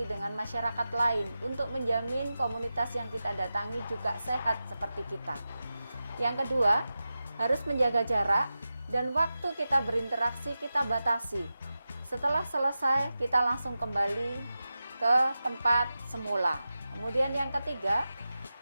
dengan masyarakat lain untuk menjamin komunitas yang kita datangi juga sehat seperti kita. Yang kedua, harus menjaga jarak dan waktu kita berinteraksi kita batasi. Setelah selesai, kita langsung kembali ke tempat semula. Kemudian yang ketiga,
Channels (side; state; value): both; inverted; correlation -0.93